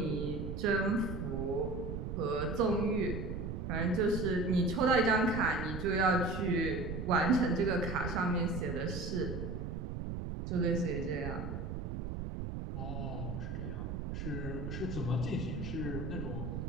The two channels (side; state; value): right; noise; rumble, 5 dB below the sound